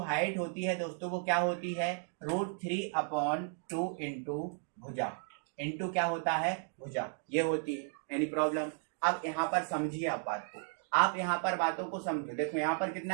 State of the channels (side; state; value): left; silent; 55 dB below the other